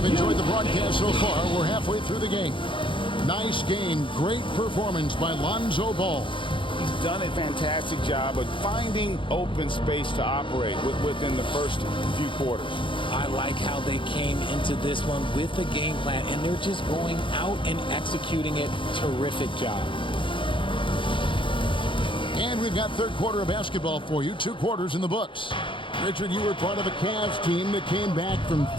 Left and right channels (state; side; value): late; right; 0.25 ms